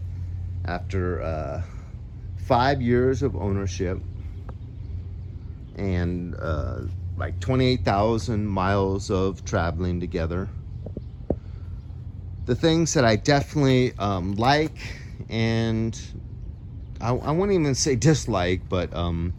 after 5 years of ownership and like 28,000 miles of traveling together. The things that I definitely like, and I won't even say dislike, but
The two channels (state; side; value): identical; both; correlation 1.00